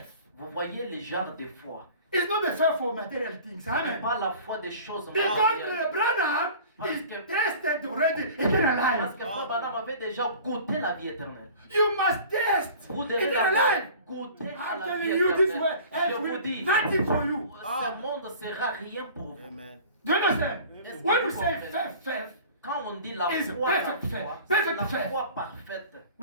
Vous voyez les genres de foi. It's not the faith for material things. Ce Amen. n'est pas la foi des choses Because matérielles. Branham Parce is que- tested already eternal Parce life. que Frère Branham avait déjà goûté la vie éternelle. You must test Vous devez eternal d'abord life. goûter à I'm la vie telling you this way. éternelle. Je It vous will dis, nothing for you. ce monde ne sera rien pour vous. Amen. Do you understand? Est-ce que When vous we say comprenez? faith, Quand on dit la Is foi, perfect faith. c'est Perfect la faith. foi parfaite,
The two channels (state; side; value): inverted; both; correlation -0.43